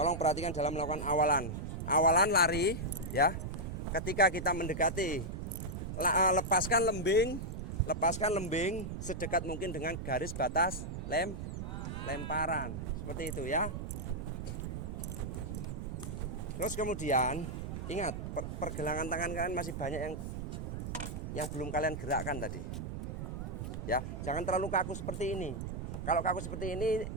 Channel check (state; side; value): noise; right; rumble, 5 dB below the sound